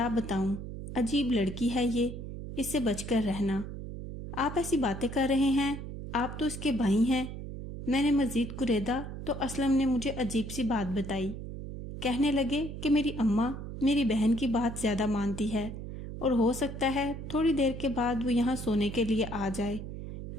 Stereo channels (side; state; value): right; noise; hum, 9 dB below the sound